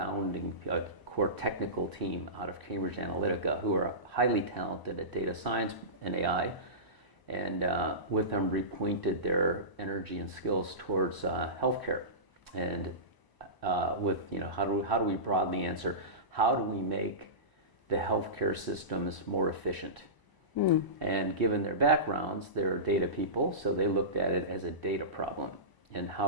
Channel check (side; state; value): right; late; 1.0 ms